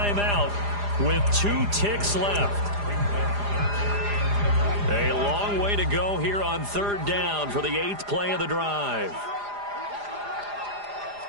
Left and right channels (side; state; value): left; late; 4.9 ms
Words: with 2 ticks left. A long way to go here on 3rd down for the 8th play of the drive.